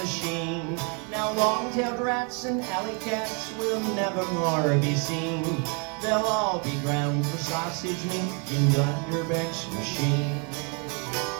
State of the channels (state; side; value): quieter; left; 35.8 dB